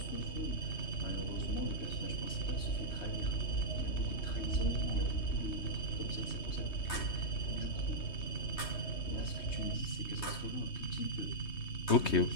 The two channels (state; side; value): late; right; 3.2 ms